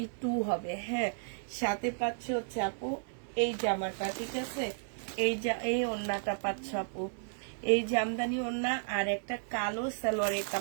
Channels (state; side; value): silent; left; 56 dB below the other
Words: হবে। হ্যাঁ, সাথে পাচ্ছ হচ্ছে আপু এই জামাটা। ঠিক আছে, এই ওড়নাটা পাচ্ছ আপু, এই জামদানি ওড়না। আর একটা কালো সালোয়ারের